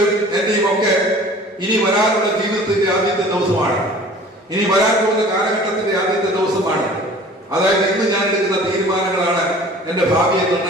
എന്റെയും ഒക്കെ ഇനി വരാനുള്ള ജീവിതത്തിന്റെ ആദ്യത്തെ ദിവസമാണ്. ഇനി വരാൻ പോകുന്ന കാലഘട്ടത്തിന്റെ ആദ്യത്തെ ദിവസമാണ്. അതായത് ഇന്ന് ഞാൻ എടുക്കുന്ന തീരുമാനങ്ങളാണ് എന്റെ ഭാവിയെ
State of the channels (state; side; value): normal; both; correlation 0.46